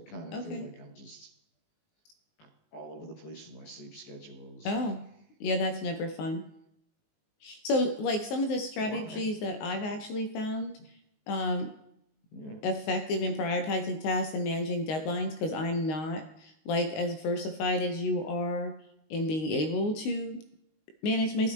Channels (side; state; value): right; late; 19 ms